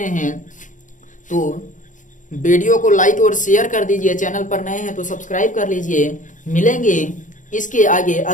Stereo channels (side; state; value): right; late; 0.37 ms